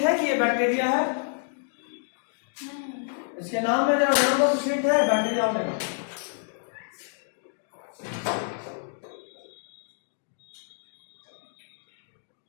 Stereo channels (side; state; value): right; silent; digital silence